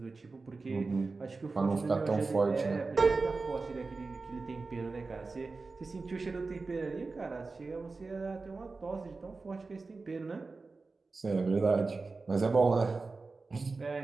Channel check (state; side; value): quieter; left; 3.9 dB